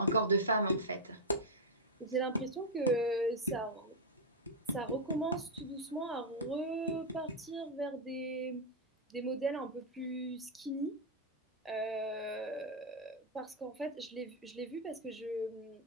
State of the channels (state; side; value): normal; both; correlation -0.01